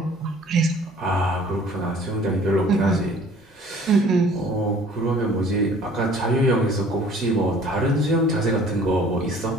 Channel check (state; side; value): normal; both; correlation 0.52